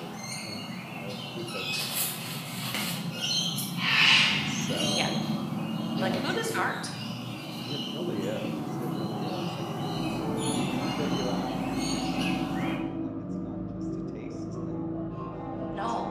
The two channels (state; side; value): identical; both; correlation 1.00